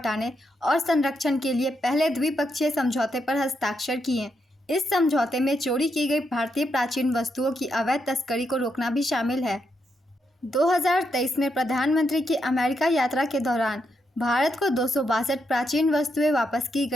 और संरक्षण के लिए पहले द्विपक्षीय समझौते पर हस्ताक्षर किए। इस समझौते में चोरी की गई भारतीय प्राचीन वस्तुओं की अवैध तस्करी को रोकना भी शामिल है। 2023 में प्रधानमंत्री की अमेरिका यात्रा के दौरान भारत को 262 प्राचीन वस्तुएं वापस की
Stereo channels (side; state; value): both; normal; correlation 0.81